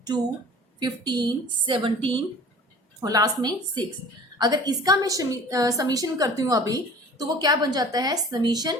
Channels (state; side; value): normal; both; correlation 0.45